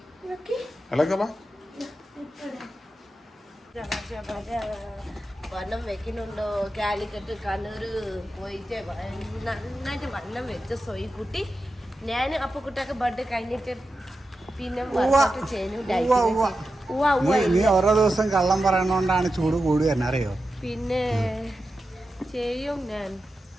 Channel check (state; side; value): normal; both; correlation 0.90